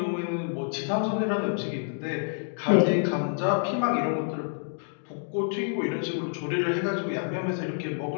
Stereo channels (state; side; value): silent; right; 59 dB below the other